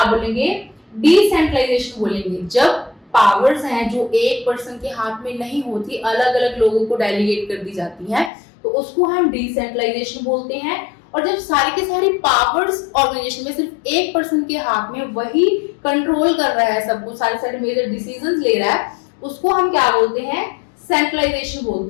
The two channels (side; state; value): right; drops out; at 8.3 s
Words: बोलेंगे, डिसेंट्रलाइजेशन बोलेंगे। जब पावर्स हैं जो एक पर्सन के हाथ में नहीं होती, अलग अलग लोगों को डेलीगेट कर दी जाती हैं, तो उसको हम डिसेंट्रलाइजेशन बोलते हैं। और जब सारी की सारी पावर्स ऑर्गेनाइजेशन में सिर्फ एक पर्सन के हाथ में, वही कंट्रोल कर रहा है सबको, सारे मेजर डिसीजंस ले रहा है, उसको हम क्या बोलते हैं, सेंट्रलाइजेशन